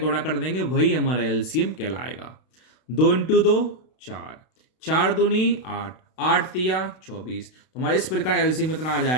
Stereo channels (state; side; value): late; right; 32 ms